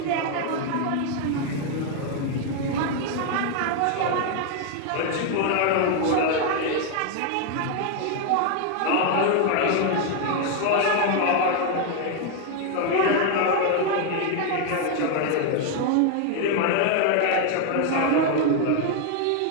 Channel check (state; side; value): different; both; correlation 0.01